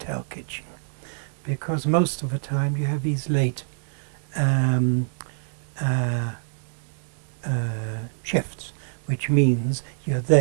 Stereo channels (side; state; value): left; silent; digital silence